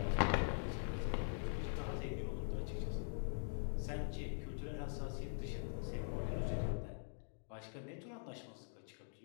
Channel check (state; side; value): silent; right; digital silence